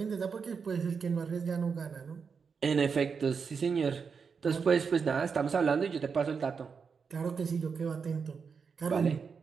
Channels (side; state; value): left; quieter; 5.8 dB